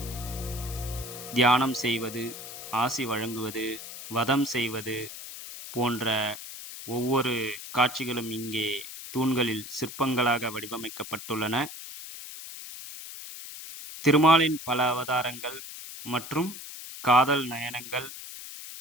தியானம் செய்வது, ஆசி வழங்குவது, வதம் செய்வது போன்ற ஒவ்வொரு காட்சிகளும் இங்கே தூண்களில் சிற்பங்களாக வடிவமைக்கப்பட்டுள்ளன. திருமாலின் பல அவதாரங்கள் மற்றும் காதல் நயனங்கள்,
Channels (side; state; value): left; noise; hiss, 11 dB below the sound